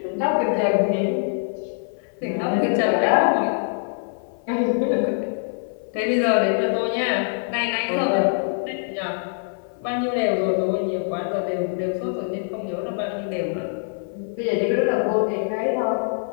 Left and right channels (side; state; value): right; silent; 56 dB below the other